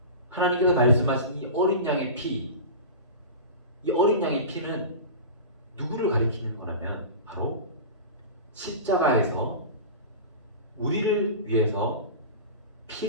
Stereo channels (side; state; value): both; inverted; correlation -0.30